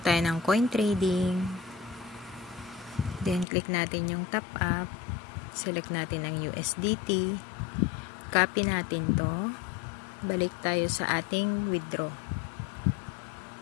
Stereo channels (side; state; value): right; drops out; at 3.5 s